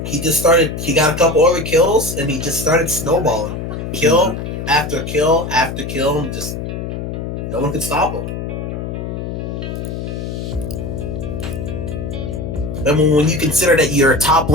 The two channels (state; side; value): noise; left; hum, 5 dB below the sound